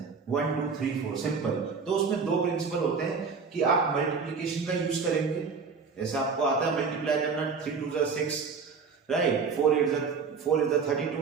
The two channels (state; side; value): quieter; left; 5.3 dB